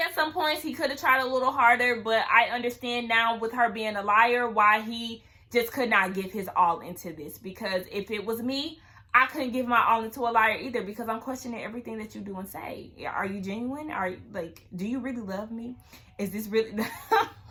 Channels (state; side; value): identical; both; correlation 1.00